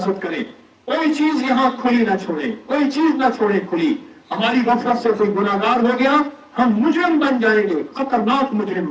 करें। कोई चीज यहां खुली ना छोड़े, कोई चीज ना छोड़े खुली। हमारी गफलत से कोई गुनाहगार हो गया, हम मुजरिम बन जाएंगे, खतरनाक मुजरिम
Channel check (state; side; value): identical; both; correlation 1.00